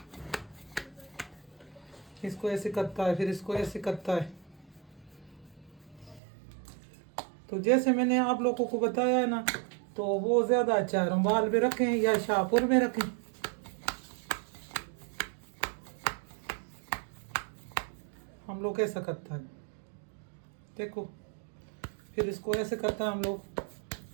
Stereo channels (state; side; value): drops out; left; at 6.2 s